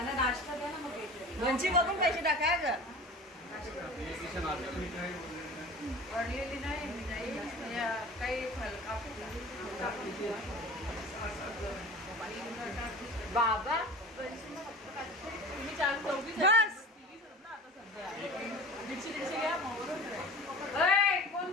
नाश्ता द्या ना मग लोणची बघून पैसे टाका ग पडलेली नाही काही बाबा तुम्ही 4-4 कोण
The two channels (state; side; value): normal; both; correlation 0.37